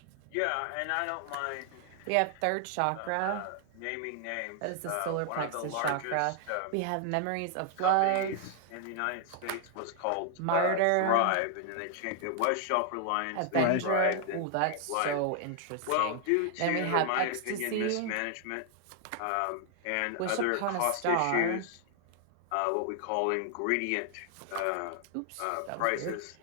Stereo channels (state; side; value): different; both; correlation 0.00